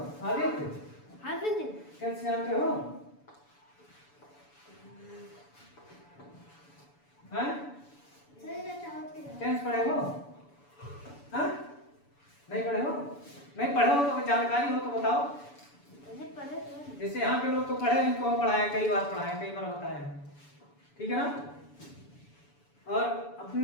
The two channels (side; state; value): right; late; 7.0 ms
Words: आदित्य टेंस जानते हो? हैं? टेंस पढ़े हो? हाँ? नहीं पढ़े हो? नहीं पढ़े हो तो जानकारी हो तो बताओ। जैसे यहाँ के लोग तो पढ़े, इनको हम पढ़ाए, कई बार बताए हैं, ठीक है ना? और अपने